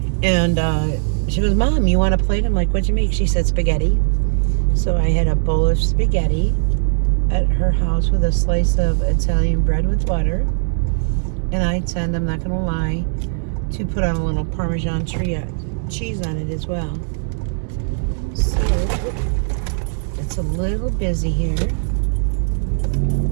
And she goes, Mom, you want a plate? I'm like, what'd you make? She said spaghetti. So I had a bowl of spaghetti at her house with a slice of Italian bread with butter. And I tend, I'm not going to lie, to put on a little Parmesan cheese on it as well. So it's a little busy here,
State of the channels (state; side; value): silent; left; digital silence